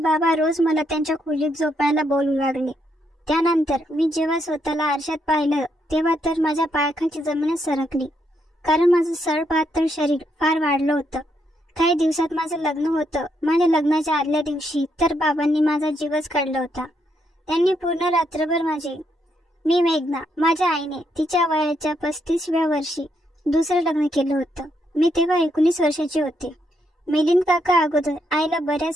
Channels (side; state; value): both; normal; correlation 0.77